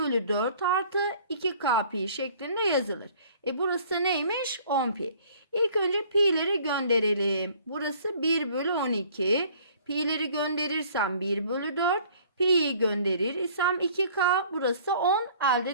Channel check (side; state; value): both; inverted; correlation -0.54